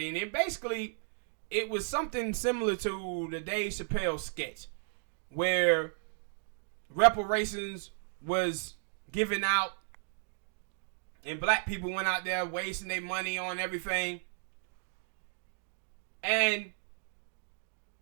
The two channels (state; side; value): silent; left; digital silence